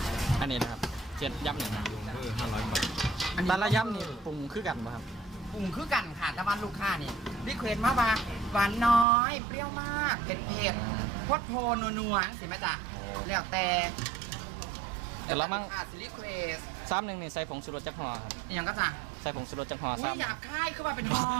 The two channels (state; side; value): drops out; left; at 9.1 s